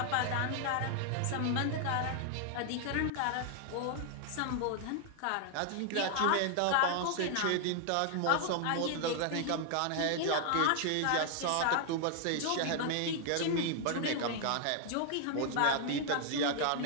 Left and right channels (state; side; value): different; both; correlation 0.00